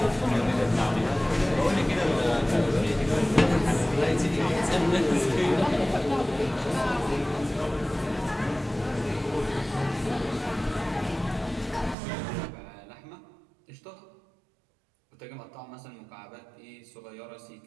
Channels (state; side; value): drops out; left; at 12.0 s